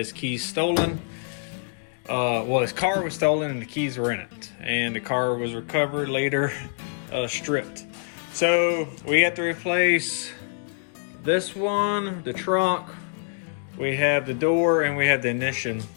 keys stolen. Well, his car was stolen and the keys were in it. And the car was recovered later, stripped. So we have to replace this one, the trunk, we have the door, and we have the ignition.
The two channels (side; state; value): right; silent; digital silence